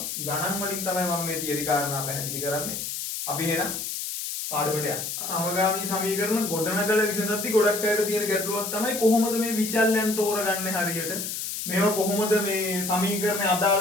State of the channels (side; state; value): left; noise; hiss, 5 dB below the sound